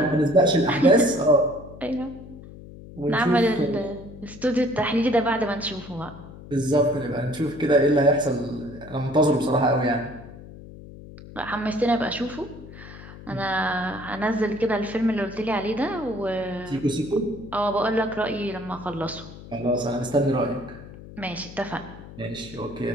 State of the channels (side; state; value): left; noise; hum, 16 dB below the sound